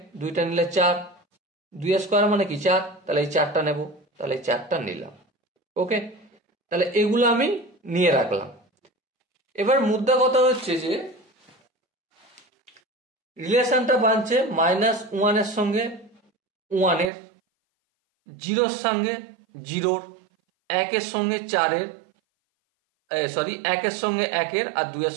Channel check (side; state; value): left; drops out; at 17.1 s